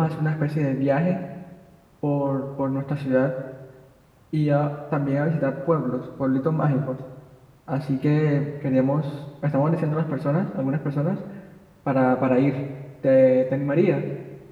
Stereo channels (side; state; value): both; identical; correlation 1.00